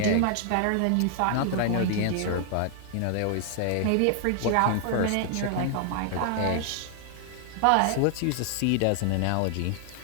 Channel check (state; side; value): different; both; correlation 0.00